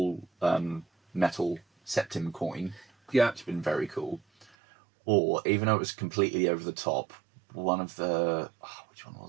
metal septim coin. Yeah. Which has been very cool. Or, even though it was completely over the top, one of the... which one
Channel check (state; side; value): drops out; left; at 4.5 s